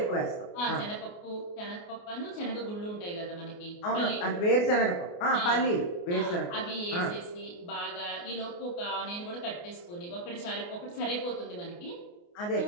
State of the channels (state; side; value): late; right; 29 ms